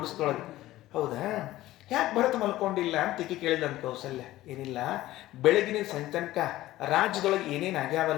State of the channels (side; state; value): right; quieter; 15.9 dB